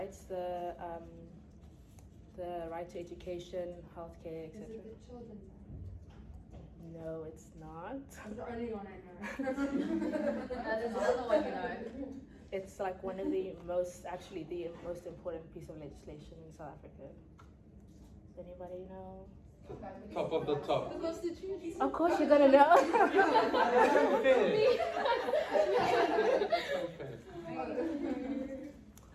The right to education, healthcare, Is etc. it the Children's Act? No, it's not. That's the only one I know. There's another one you know. It's like one of the most important piece of legislation in South Africa. Does anybody know? Top of the top. The Constitution. Of course you're gonna know.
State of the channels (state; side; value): identical; both; correlation 1.00